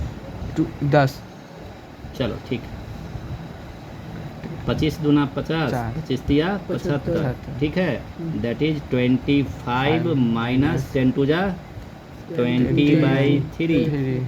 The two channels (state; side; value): identical; both; correlation 1.00